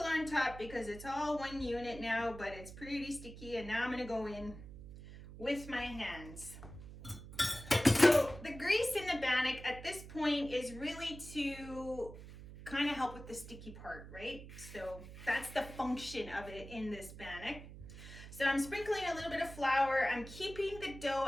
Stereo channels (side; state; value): right; noise; hum, 14 dB below the sound